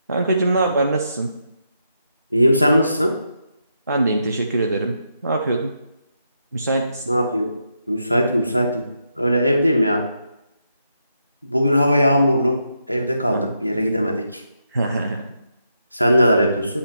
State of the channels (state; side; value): inverted; both; correlation -0.82